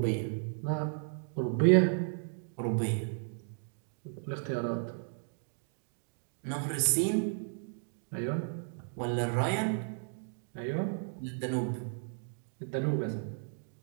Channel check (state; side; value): silent; left; digital silence